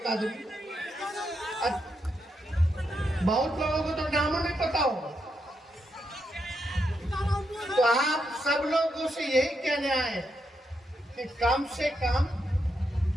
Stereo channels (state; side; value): normal; both; correlation 0.82